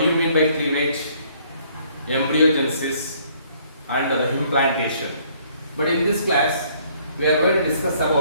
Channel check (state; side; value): inverted; both; correlation -0.63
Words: you mean by cleavage, embryogenesis, and the implantation. But in this class, we are going to discuss